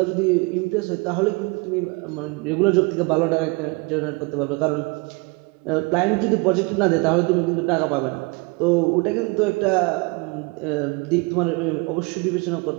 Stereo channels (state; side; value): quieter; left; 28.0 dB